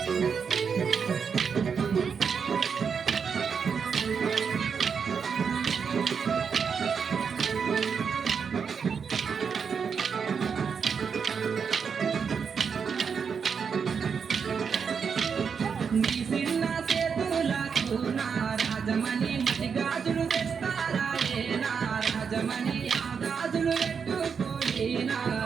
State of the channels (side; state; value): left; quieter; 6.3 dB